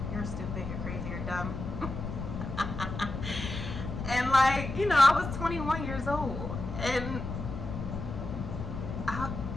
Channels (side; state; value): left; noise; rumble, 6 dB below the sound